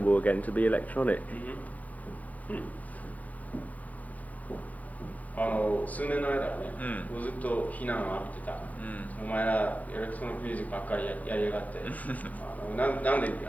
again to be electronic. 数年の間はね、ずっと非難を浴びてた、お前らエレクトロニックミュージックばっかりやりやがってなんでギ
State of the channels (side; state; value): right; late; 0.076 ms